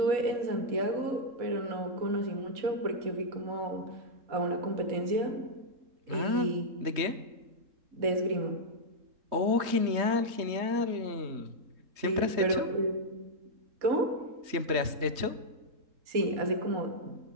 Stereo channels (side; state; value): left; late; 3.7 ms